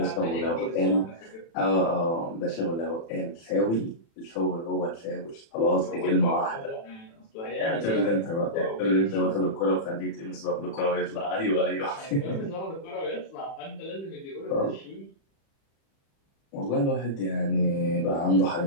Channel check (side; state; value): right; late; 36 ms